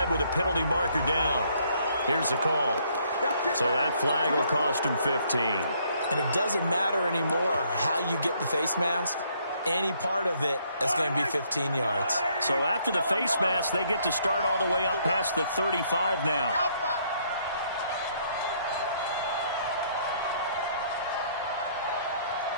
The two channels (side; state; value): both; inverted; correlation -0.67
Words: with a penalty marker down. Here's the call. So that flag will cost him 15. And it doesn't matter anymore how you get the face mask. Any part of it is going to be 15 yards. So after the face mask, they get to start all the way up past the 35 now.